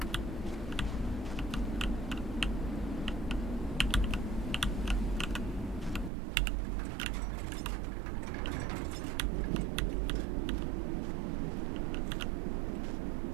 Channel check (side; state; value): left; drops out; at 6.1 s